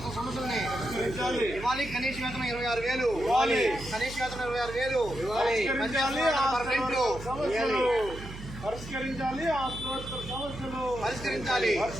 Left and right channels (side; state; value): right; noise; hum, 12 dB below the sound